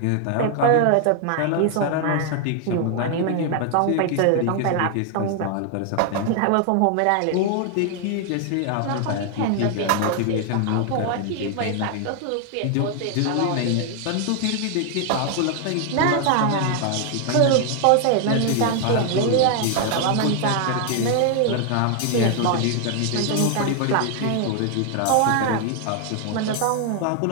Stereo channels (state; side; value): different; both; correlation 0.00